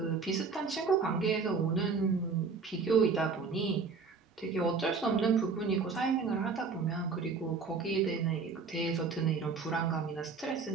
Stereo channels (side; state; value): left; quieter; 4.9 dB